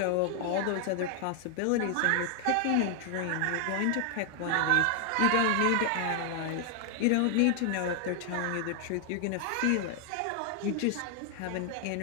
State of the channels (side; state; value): both; different; correlation 0.00